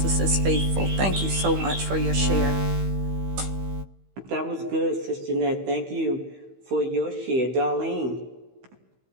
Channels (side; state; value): left; late; 15 ms